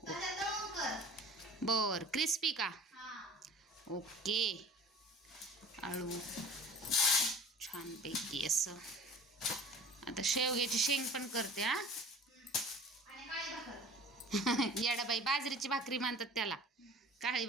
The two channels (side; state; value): both; normal; correlation 0.42